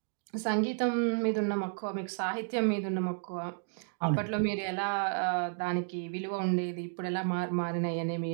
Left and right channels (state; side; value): silent; left; digital silence